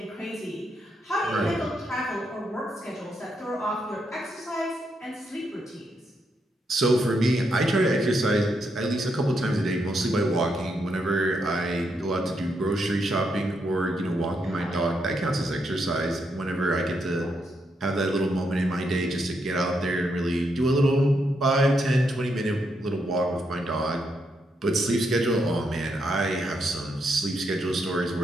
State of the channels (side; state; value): both; normal; correlation 0.80